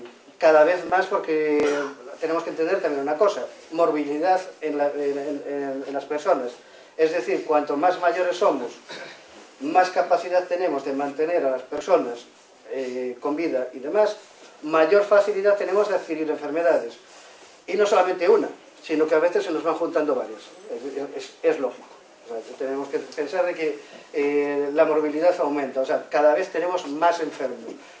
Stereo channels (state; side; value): identical; both; correlation 1.00